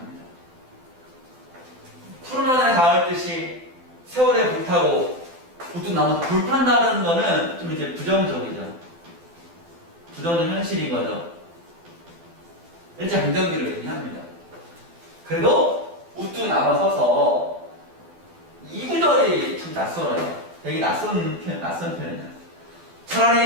푸른 하늘에 닿을 듯이 세월에 불타고 우뚝 나무 불탄다는 거는 좀 이제 부정적이죠. 부정적 현실인 거죠. 일제 강점기를 의미합니다. 그래도 우뚝 남아서서 이 구절이 좀 낯설어요. 되게 낯선 표현이야.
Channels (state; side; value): late; left; 12 ms